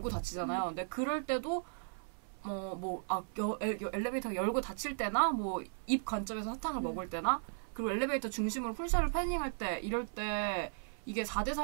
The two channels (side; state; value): left; silent; 54 dB below the other